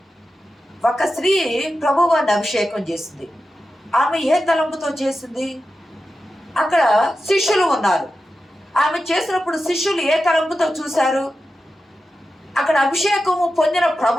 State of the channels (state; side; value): normal; both; correlation 0.91